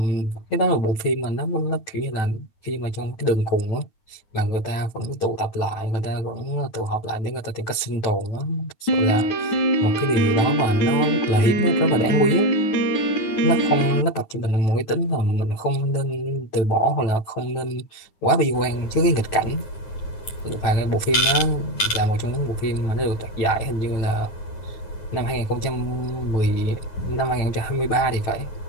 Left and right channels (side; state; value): right; late; 9.5 ms